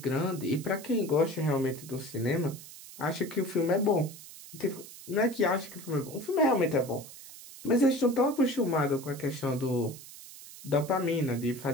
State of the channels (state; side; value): noise; right; hiss, 16 dB below the sound